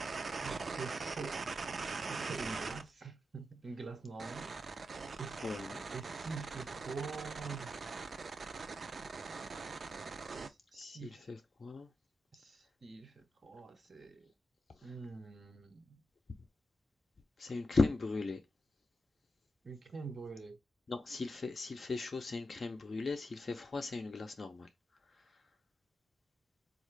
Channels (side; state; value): both; normal; correlation 0.87